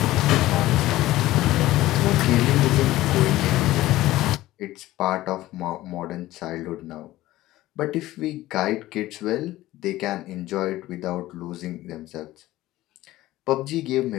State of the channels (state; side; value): quieter; right; 16.3 dB